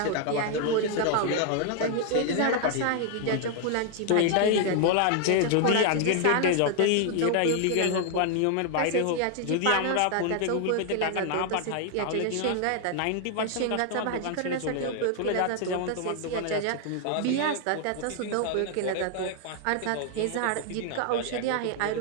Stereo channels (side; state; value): both; different; correlation 0.00